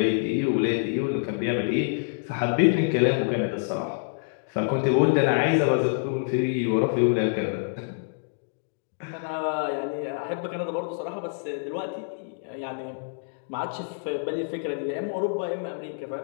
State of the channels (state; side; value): silent; right; digital silence